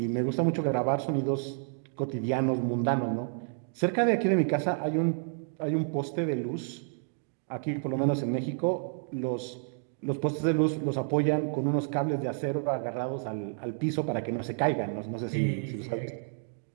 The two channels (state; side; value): silent; left; digital silence